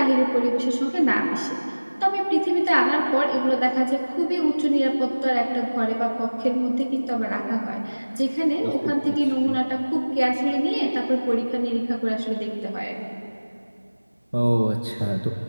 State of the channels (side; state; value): both; inverted; correlation -1.00